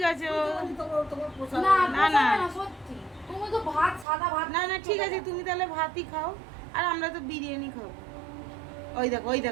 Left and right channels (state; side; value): drops out; left; at 4.0 s